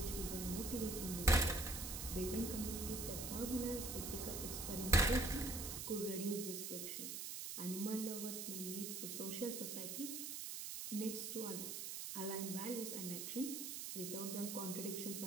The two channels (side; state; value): right; noise; hiss, 5 dB below the sound